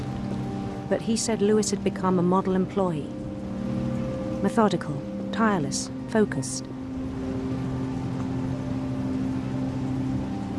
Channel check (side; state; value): both; identical; correlation 1.00